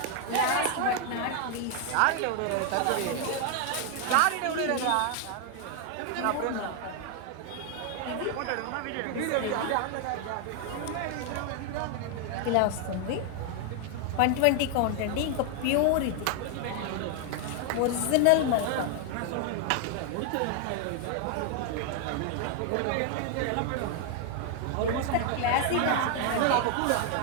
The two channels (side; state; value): both; different; correlation 0.00